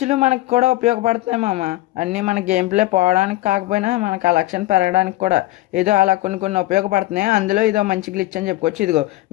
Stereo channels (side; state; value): right; quieter; 17.8 dB